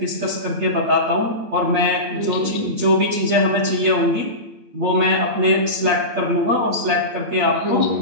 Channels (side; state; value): left; late; 8.7 ms